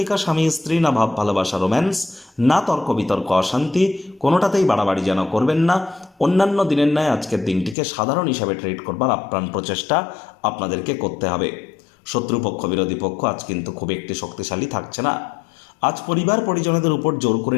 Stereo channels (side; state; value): right; drops out; at 7.8 s